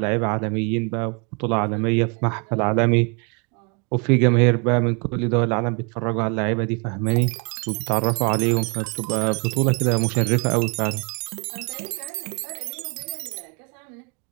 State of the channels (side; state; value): left; quieter; 34.7 dB